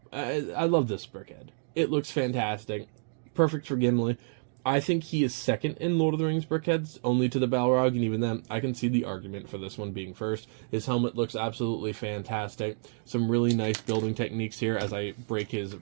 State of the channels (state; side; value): silent; left; digital silence